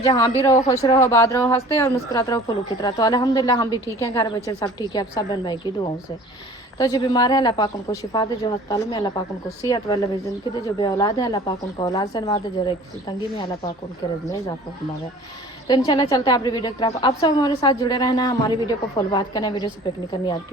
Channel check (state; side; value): normal; both; correlation 0.47